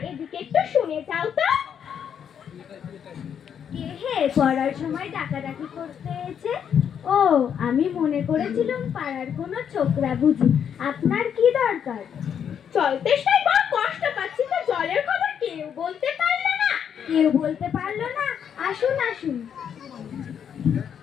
এদিকে একটু শুনে যাও তো। কে হে পড়ার সময় ডাকাডাকি করতে এসে? ও, আমি মনে করেছিলাম পাড়ার কোনো ছোকরা বুঝি। আপনার কি দরকার? জল তেষ্টায় বড় কষ্ট পাচ্ছি, তো জলের খবর কেউ বলতে পারলো না। কেউ বলতে পারলো না? আসুন আসুন।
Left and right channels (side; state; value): right; quieter; 8.2 dB